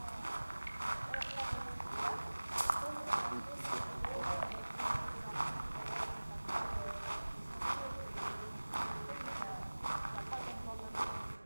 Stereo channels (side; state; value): both; inverted; correlation -1.00